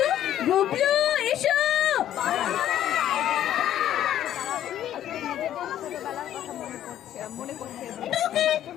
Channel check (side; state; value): right; quieter; 11.5 dB